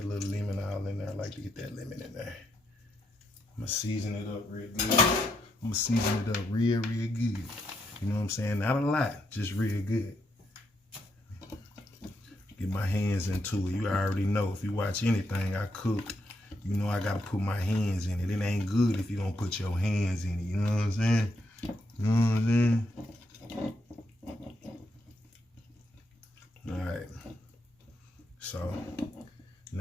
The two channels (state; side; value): normal; both; correlation 0.79